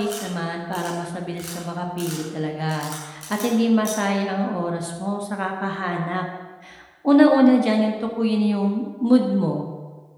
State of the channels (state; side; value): identical; both; correlation 1.00